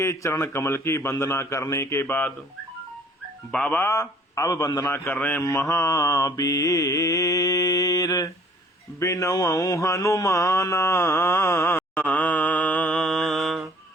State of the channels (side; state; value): both; normal; correlation 0.55